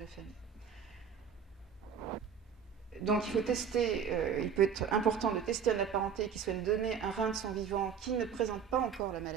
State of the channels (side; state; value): left; quieter; 7.2 dB